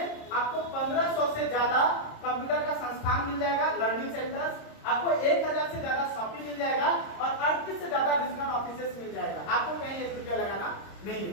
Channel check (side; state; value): right; late; 26 ms